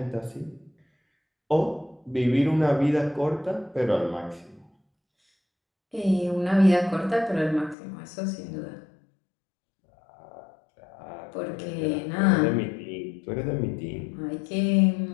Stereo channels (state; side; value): drops out; right; at 7.8 s